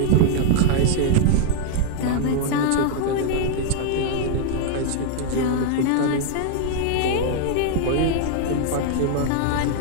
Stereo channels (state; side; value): different; both; correlation -0.01